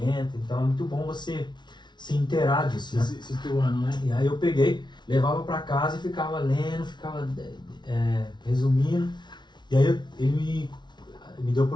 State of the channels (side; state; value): right; late; 0.21 ms